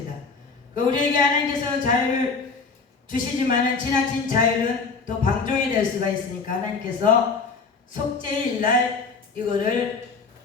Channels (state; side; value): quieter; right; 4.6 dB